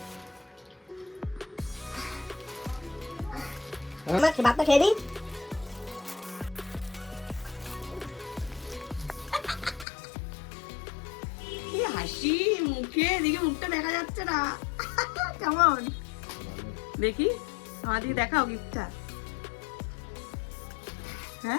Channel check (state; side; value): drops out; right; at 9.9 s